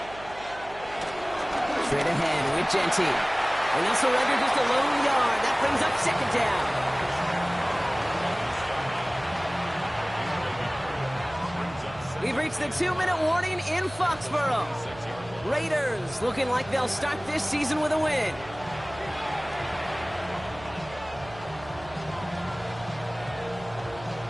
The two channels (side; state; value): right; noise; hum, 18 dB below the sound